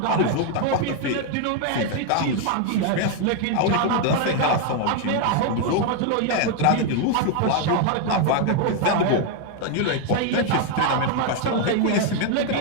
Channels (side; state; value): both; different; correlation 0.01